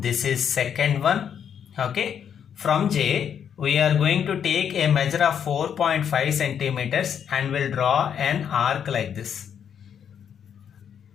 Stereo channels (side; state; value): right; quieter; 8.3 dB